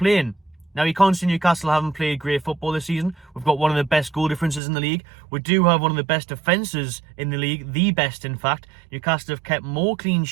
Now, you can't say Newcastle haven't played great football this season. We've got one of the best goal differences in the league. We do have one of the best defences in the league, the best, in fact. Newcastle have kept more clean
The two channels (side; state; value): left; drops out; at 4.6 s